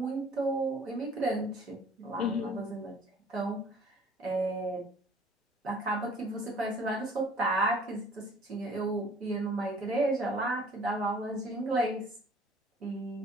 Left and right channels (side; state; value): both; normal; correlation 0.53